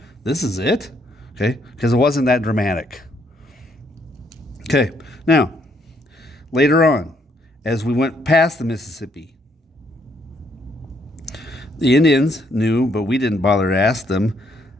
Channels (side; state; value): both; normal; correlation 0.71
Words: This is it? Okay? Because it wasn't that dramatic. Okay, now, later on, as we went past the Mississippi, the Indians knew, but we didn't bother to ask them.